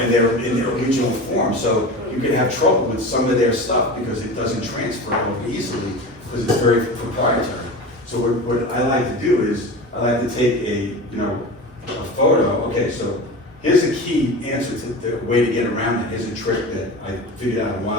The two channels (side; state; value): both; normal; correlation 0.30